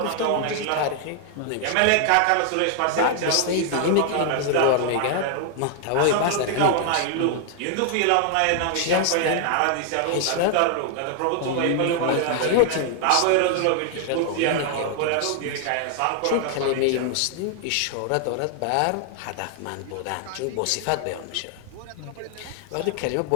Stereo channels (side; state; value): both; different; correlation 0.00